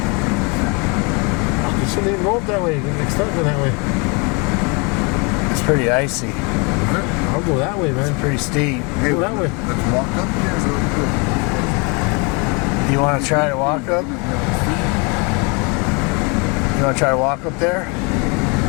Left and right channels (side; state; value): right; quieter; 31.5 dB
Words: shouldn't even go up that way. Get started that way. It's pretty icy. I'll go that way, man. It's pretty steep. Hey, go that way. Let's walk up here. You want to try to walk up? You want to try to walk up there?